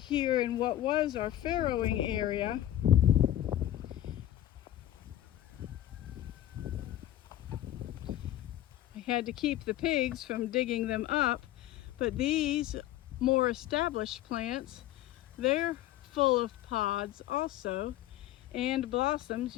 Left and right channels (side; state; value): right; quieter; 13.2 dB